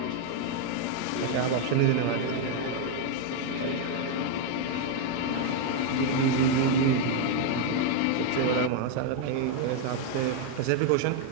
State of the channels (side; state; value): both; different; correlation 0.01